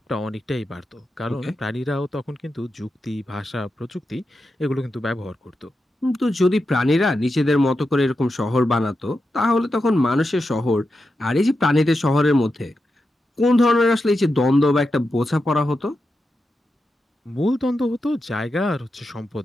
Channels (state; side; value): normal; both; correlation 0.89